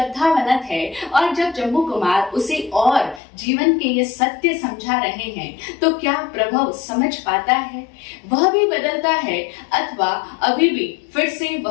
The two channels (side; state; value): right; drops out; at 3.2 s